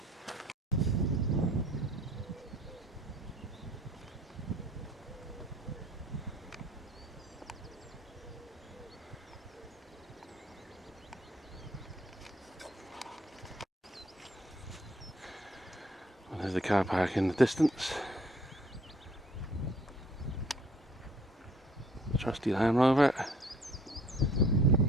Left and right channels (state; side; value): normal; both; correlation 0.59